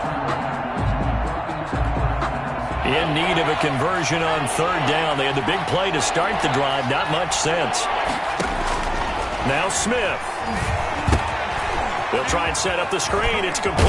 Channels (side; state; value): both; identical; correlation 1.00